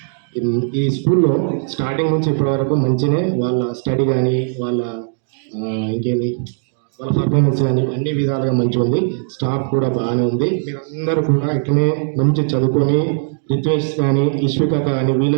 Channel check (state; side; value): silent; left; digital silence